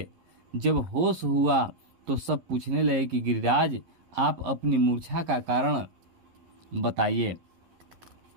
जब होश हुआ तो सब पूछने लगे कि गिरिराज, आप अपनी मूर्छा का कारण बताइए।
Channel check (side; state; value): left; late; 11 ms